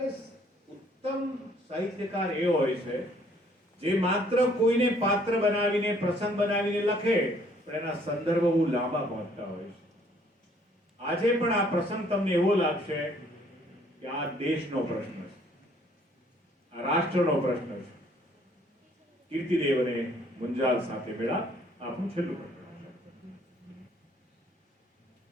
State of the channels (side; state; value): both; normal; correlation 0.62